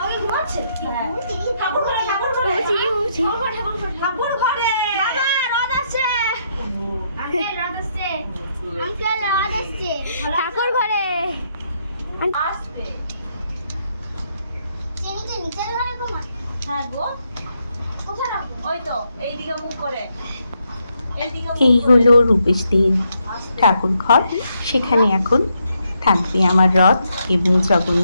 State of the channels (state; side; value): inverted; both; correlation -0.77